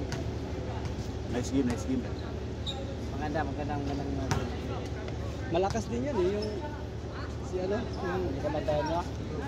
Nice game, nice game. Magandang Malakas din yan eh, yung si ano, yung kamatayan niya.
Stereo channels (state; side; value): identical; both; correlation 1.00